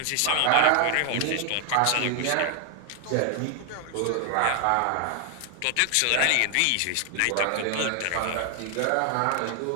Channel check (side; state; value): both; different; correlation 0.00